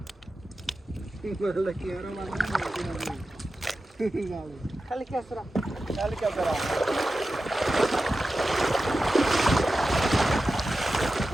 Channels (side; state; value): both; normal; correlation 0.93